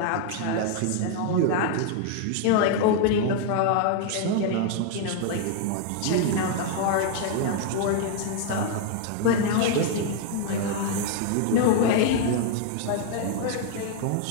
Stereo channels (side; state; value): both; different; correlation 0.00